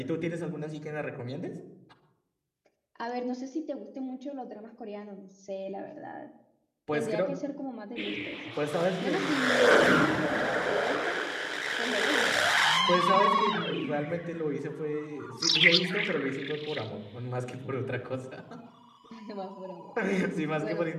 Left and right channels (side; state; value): both; identical; correlation 1.00